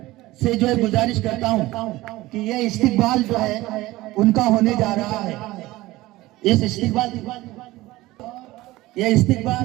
से जो है गुजारिश करता हूं कि ये इस्तिकबाल जो है उनका होने जा रहा है। इस इस्तिकबाल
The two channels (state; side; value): quieter; left; 18.3 dB